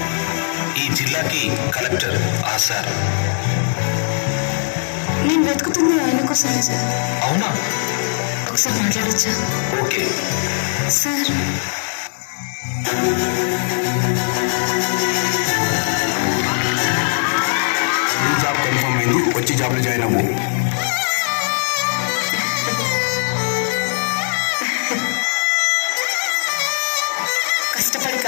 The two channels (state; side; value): silent; right; digital silence